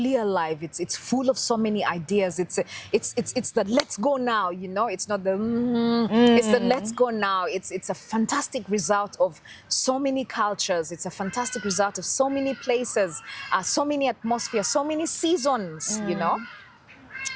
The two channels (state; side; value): identical; both; correlation 1.00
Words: alive. It's full of so many ideas. It's the let's go now. You know, it's not the it's the let's go now. It's a fantastic result of so many cultures. It's a fantastic result of so many places, so many atmospheres, so many seasons. You know.